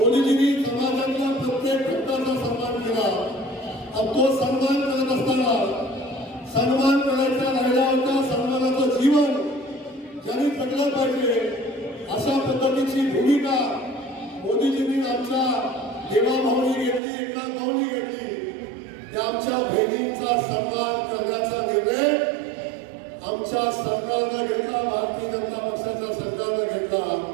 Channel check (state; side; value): drops out; left; at 17.0 s